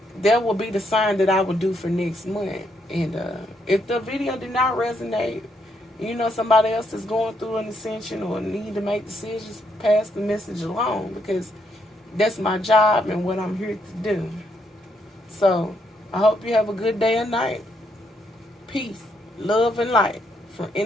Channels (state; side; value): normal; both; correlation 0.76